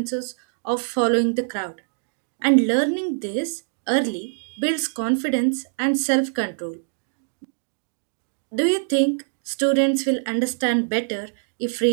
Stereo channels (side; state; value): left; silent; digital silence